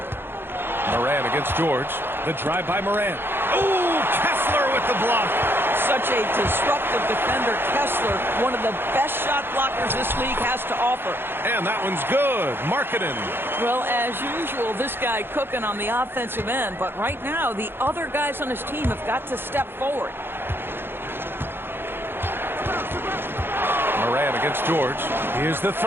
Morant against George. The drive by Morant. Ooh, Kessler with the block. Such a disruptive defender, Kessler, one of the best shot blockers this league has to offer. And that one's good. Markkanen. Well, as usual, this guy cooking on the offensive end, but right now the other guys on his team have got to step forward. Morant against George. Here's the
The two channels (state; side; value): late; left; 0.10 ms